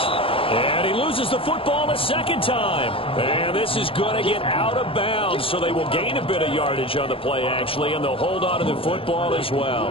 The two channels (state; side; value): late; right; 0.27 ms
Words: And he loses the football a 2nd time. And this is going to get out of bounds, so they will gain a bit of yardage on the play, actually, and they'll hold on to the football as well.